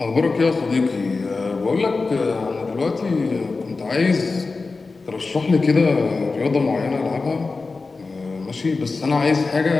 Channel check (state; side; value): quieter; right; 4.0 dB